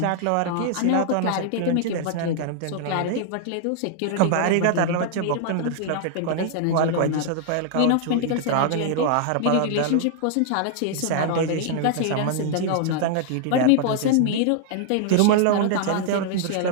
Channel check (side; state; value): both; different; correlation -0.01